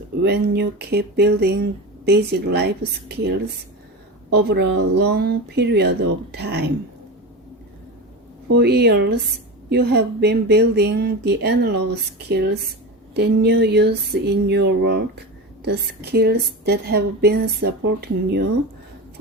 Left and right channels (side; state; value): both; normal; correlation 0.24